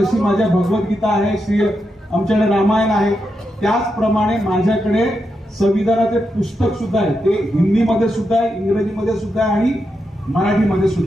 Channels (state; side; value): normal; both; correlation 0.85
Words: माझ्या भगवद्गीता आहे, श्री आमच्याकडे रामायण आहे, त्याचप्रमाणे माझ्याकडे संविधानाचे पुस्तक सुद्धा आहे. ते हिंदीमध्ये सुद्धा आहे, इंग्रजीमध्ये सुद्धा आहे आणि मराठीमध्ये